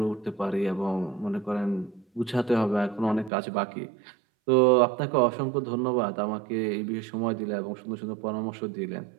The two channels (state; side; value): drops out; left; at 3.3 s